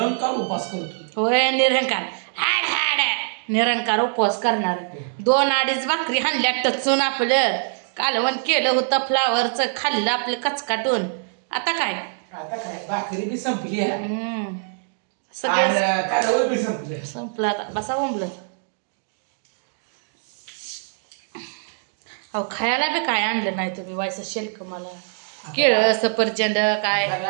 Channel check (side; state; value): left; silent; 59 dB below the other